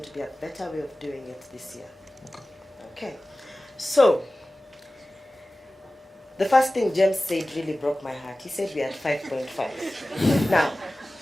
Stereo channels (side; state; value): both; normal; correlation 0.96